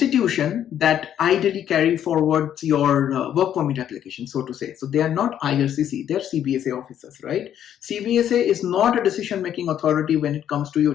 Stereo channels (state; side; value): quieter; right; 10.2 dB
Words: that ideally carry forward your work permit application, so to say. So they are not IRCC, they're CBSA officers, right? CBSA is not a decision-making authority when it comes to